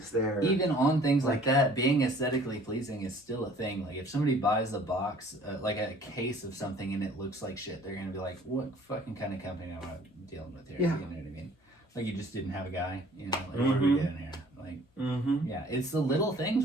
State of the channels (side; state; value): both; normal; correlation 0.53